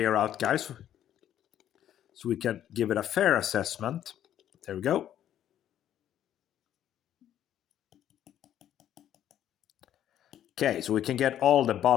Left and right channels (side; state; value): right; quieter; 11.0 dB